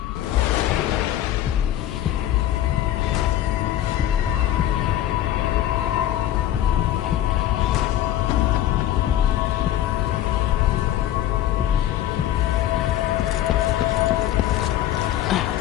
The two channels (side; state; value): right; quieter; 12.6 dB